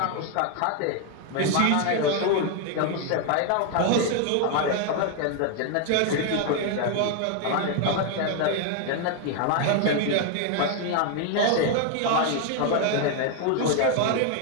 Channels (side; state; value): both; different; correlation 0.01